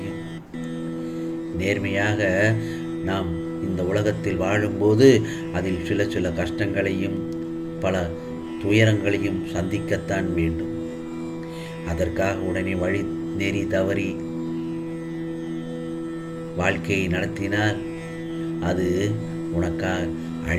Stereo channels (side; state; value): both; identical; correlation 1.00